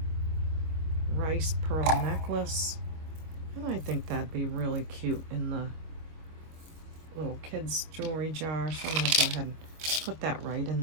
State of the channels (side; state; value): left; late; 25 ms